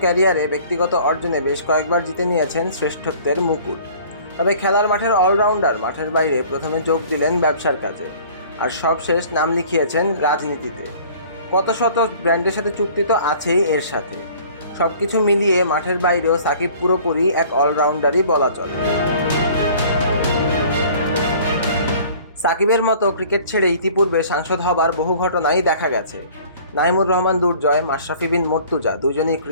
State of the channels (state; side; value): inverted; both; correlation -0.50